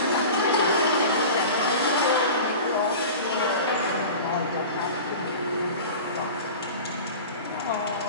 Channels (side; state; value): both; inverted; correlation -0.35